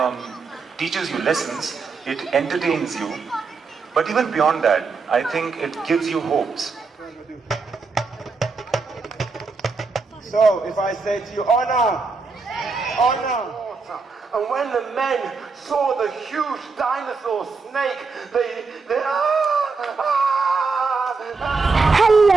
teaches you lessons, it entertains you, but even beyond that, I think it gives you hopes. So, if I say to you, honor, honor. And when the men saw the huge dinosaur snake, they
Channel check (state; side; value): quieter; left; 4.4 dB